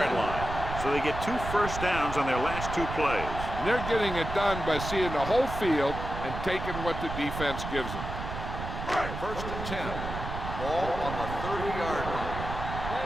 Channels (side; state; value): right; noise; rumble, 6 dB below the sound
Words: line. So they get 2 first downs on their last 2 plays. And they're getting it done by seeing the whole field and taking what the defense gives them. 1st and 10. Ball on the 30-yard line.